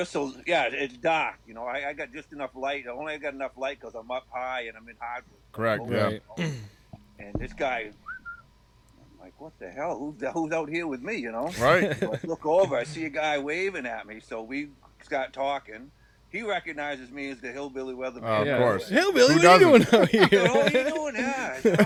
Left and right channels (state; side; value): identical; both; correlation 1.00